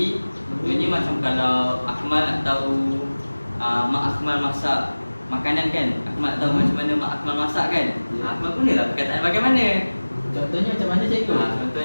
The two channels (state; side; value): inverted; both; correlation -1.00